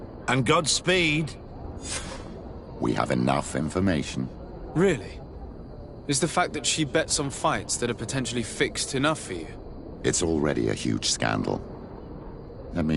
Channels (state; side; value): identical; both; correlation 1.00